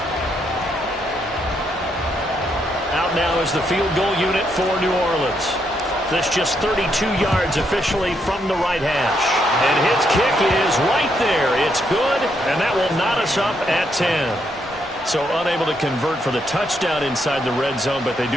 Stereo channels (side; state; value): both; normal; correlation 0.77